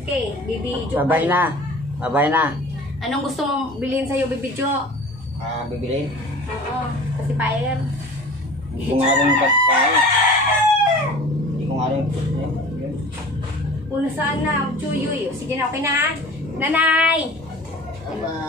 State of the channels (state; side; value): normal; both; correlation 0.41